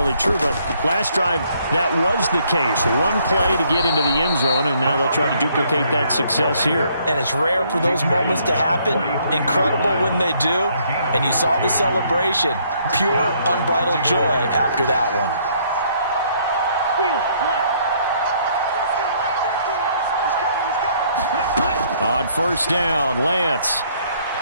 true, but last drive, that was the case. One play to get into the end zone, and now they'll try to duplicate that success here. And it's rare for those moments to happen. Incredible when they do. And you saw the celebration. Pure, unbridled joy after that one. On 1st down, Lance.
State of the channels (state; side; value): inverted; both; correlation -0.66